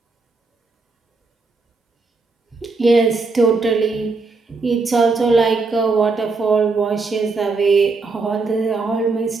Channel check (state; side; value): quieter; left; 4.0 dB